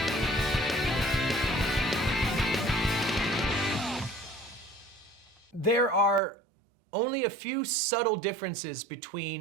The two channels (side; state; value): left; drops out; at 6.2 s